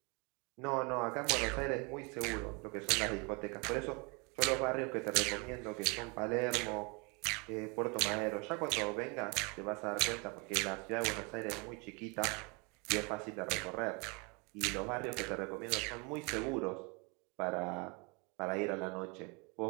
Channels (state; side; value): quieter; left; 30.6 dB